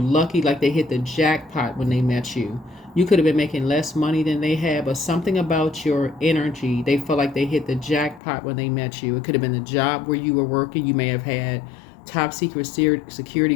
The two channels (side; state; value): right; drops out; at 8.2 s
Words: like they hit the jackpot when they met you. You could have been making less money than they had, but something about your energy, they felt like they hit the jackpot when they met you. It could have been the job where you were working. You may have had top secret security